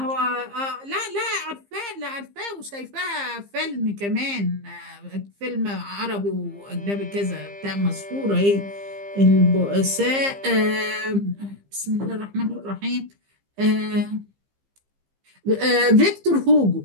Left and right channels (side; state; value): left; late; 15 ms